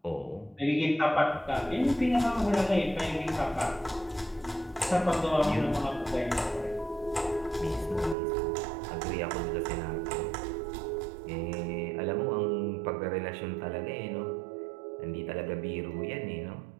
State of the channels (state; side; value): drops out; left; at 8.2 s